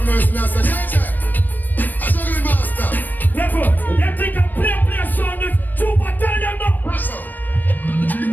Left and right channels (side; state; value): right; late; 0.089 ms